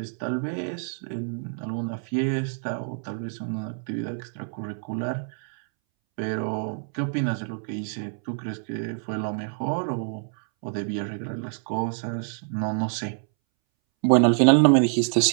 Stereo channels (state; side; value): silent; left; 61 dB below the other